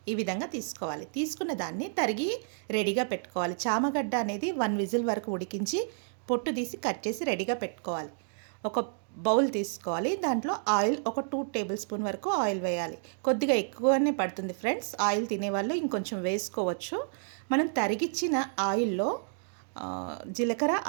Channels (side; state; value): left; silent; digital silence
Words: ఈ విధంగా తీసుకోవాలి. తీసుకున్న దాన్ని తరిగి రెడీగా పెట్టుకోవాలి. చామగడ్డ అనేది 1 విజిల్ వరకు ఉడికించి పొట్టు తీసి కట్ చేసి రెడీగా పెట్టుకోవాలి. ఒక బౌల్ తీసుకోవాలి. దాంట్లో ఆయిల్ ఒక 2 టేబుల్ స్పూన్ వరకు ఆయిల్ వేయాలి. కొద్దిగా ఎక్కువనే పడుతుంది ఫ్రెండ్స్. ఆయిల్ తినేవాళ్ళు ఇంకొంచెం వేసుకోవచ్చు. మనం తరిగిచ్చిన ఆయిల్లో జీలకర్ర,